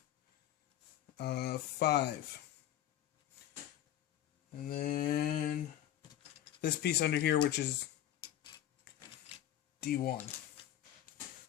And then this piece under here, which is D1.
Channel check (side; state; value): right; quieter; 12.0 dB